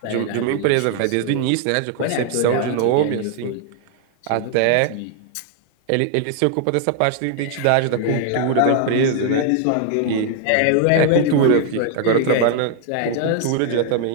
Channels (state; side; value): different; both; correlation 0.00